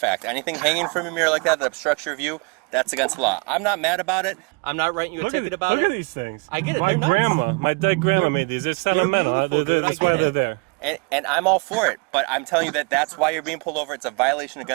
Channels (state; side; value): quieter; left; 31.8 dB